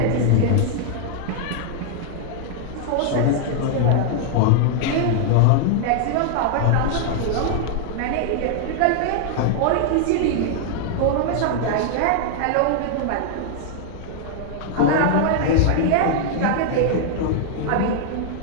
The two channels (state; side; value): different; both; correlation -0.01